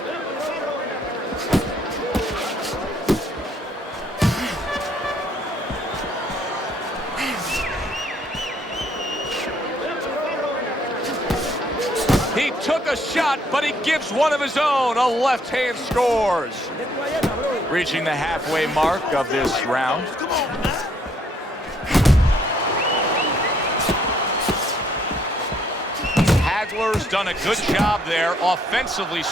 He took a shot, but he gives one of his own. A left hand scores. Reaching the halfway mark of this round. Hagler's done a good job there, offensively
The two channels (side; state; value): both; normal; correlation 0.67